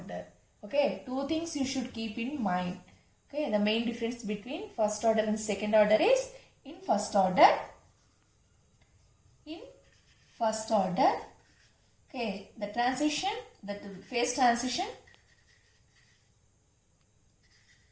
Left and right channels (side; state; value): both; identical; correlation 1.00